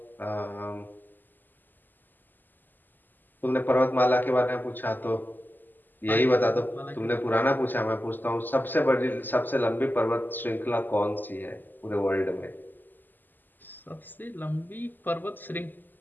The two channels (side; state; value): right; late; 0.089 ms